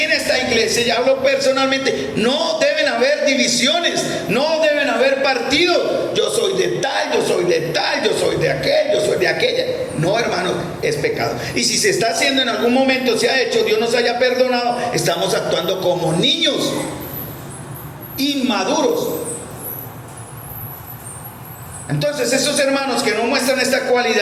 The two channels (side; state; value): both; identical; correlation 1.00